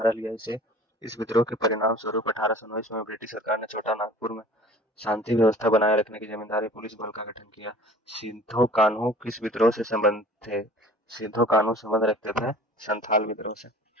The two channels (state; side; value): normal; both; correlation 0.46